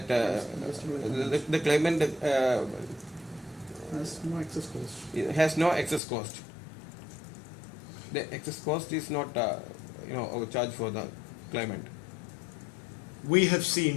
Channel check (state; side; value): drops out; right; at 6.0 s